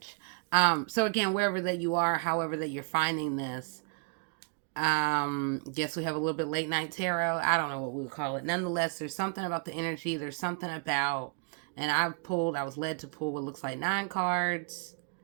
So again, wherever that you are, however that you're finding this, guess we have a little bit late night tarot. I don't know what we would call it. Nonetheless, there's something about the energy. There's something about, and I was led to pull what looks like 9 cards.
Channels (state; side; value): quieter; left; 37.0 dB